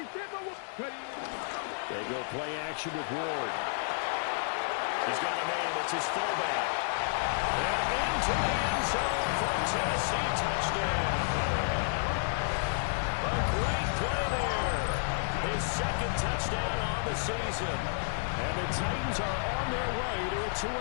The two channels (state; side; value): silent; right; digital silence